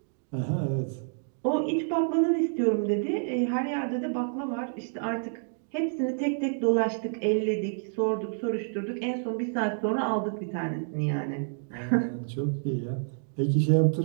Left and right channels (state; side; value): silent; left; digital silence